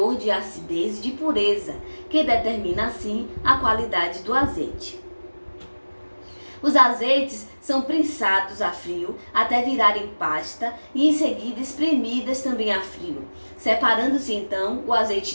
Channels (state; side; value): inverted; both; correlation -1.00